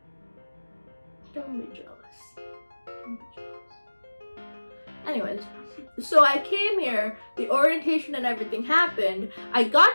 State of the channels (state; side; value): inverted; both; correlation -1.00